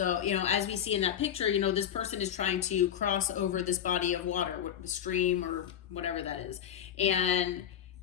as we see in that picture, this person is trying to cross over this body of water, the stream or whatever that is. And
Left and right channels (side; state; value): right; quieter; 9.7 dB